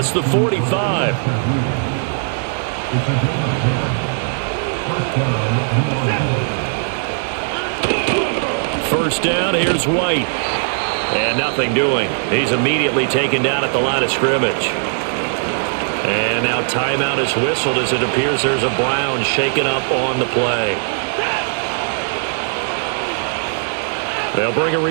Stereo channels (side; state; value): left; silent; digital silence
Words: the 45. First down, here's White. And nothing doing. He's immediately taken down at the line of scrimmage. And now timeout is whistled as it appears there's a Brown shaken up on the play. They'll bring a